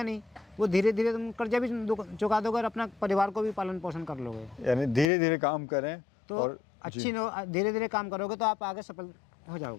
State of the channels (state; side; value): drops out; right; at 5.1 s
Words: नहीं, वो धीरे धीरे तुम कर्जा भी चुका दोगे और अपना परिवार को भी पालन पोषण कर लोगे। यानी धीरे धीरे काम करें तो और धीरे धीरे काम करोगे तो आप आगे सफल हो